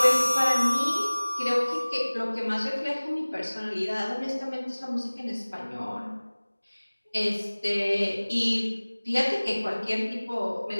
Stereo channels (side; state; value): both; inverted; correlation -1.00